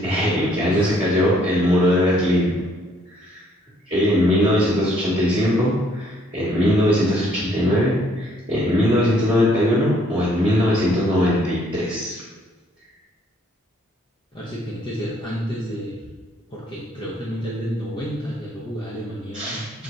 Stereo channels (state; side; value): normal; both; correlation 0.65